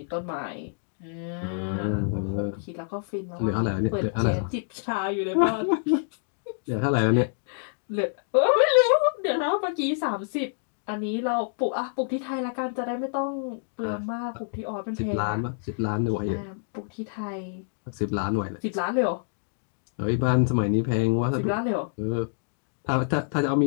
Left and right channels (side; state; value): right; silent; digital silence